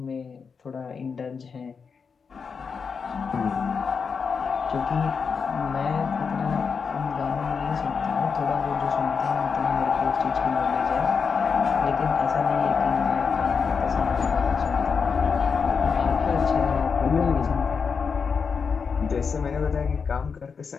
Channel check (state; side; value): quieter; right; 5.7 dB